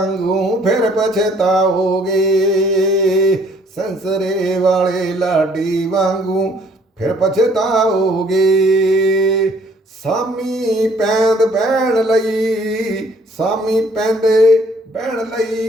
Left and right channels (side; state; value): both; normal; correlation 0.61